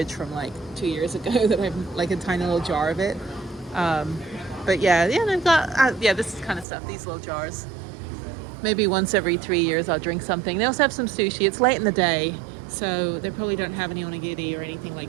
from like 2 years ago that I have like a tiny little jar of it. But yeah, they've got, this kind of stuff, these little jars. Maybe once every 3 years I'll drink something. They also have some sushi. It's late in the day, so they probably don't have any onigiri or anything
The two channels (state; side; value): drops out; left; at 6.7 s